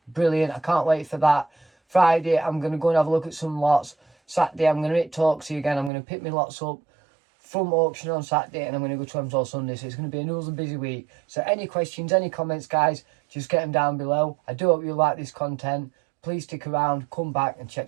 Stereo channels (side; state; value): left; drops out; at 5.9 s